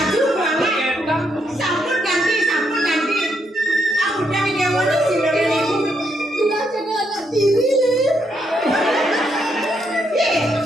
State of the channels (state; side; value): normal; both; correlation 0.77